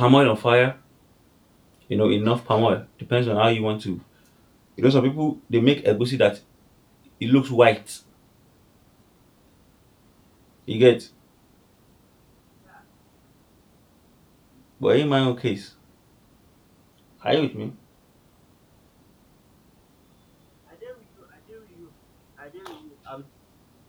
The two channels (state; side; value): identical; both; correlation 1.00